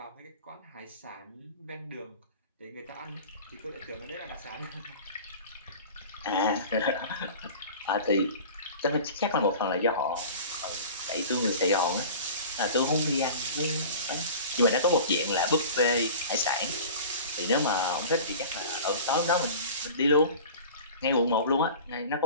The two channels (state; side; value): inverted; both; correlation -0.39